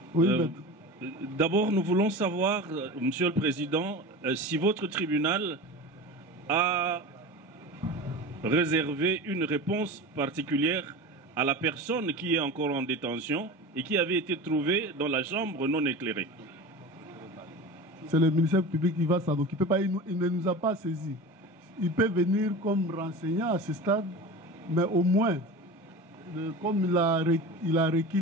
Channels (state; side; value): normal; both; correlation 0.31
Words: Oui, d'abord, nous voulons savoir, Monsieur le Président, si votre tribunal a réservé une réponse particulière à la personne qui est encore en détention et qui avait été trouvée dans la chambre non éclairée. C'est le ministère public qui va s'en occuper. Il ne nous a pas saisis. Il peut venir comme renseignant à ce stade, mais au moins, comme il a requis